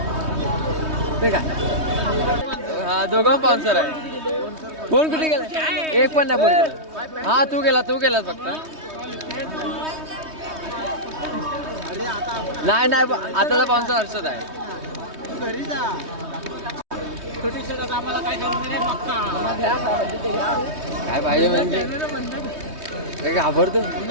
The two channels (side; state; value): left; late; 3.2 ms